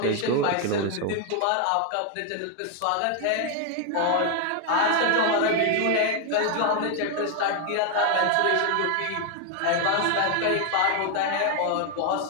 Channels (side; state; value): both; different; correlation 0.01